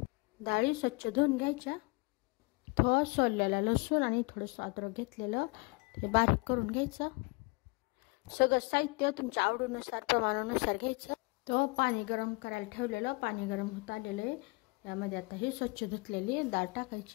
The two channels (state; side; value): quieter; right; 27.6 dB